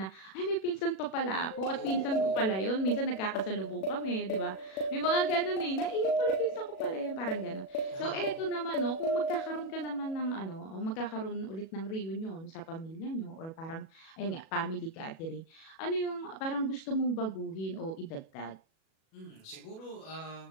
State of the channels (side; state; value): right; late; 37 ms